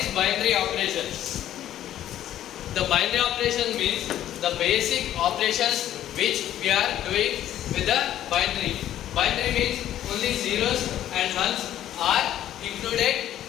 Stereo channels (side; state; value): right; quieter; 12.0 dB